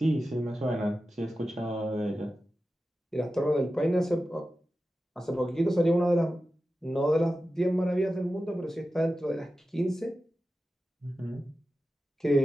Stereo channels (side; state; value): both; normal; correlation 0.93